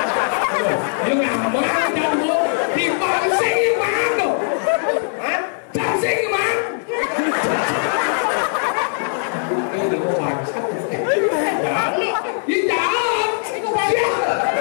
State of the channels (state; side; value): silent; right; digital silence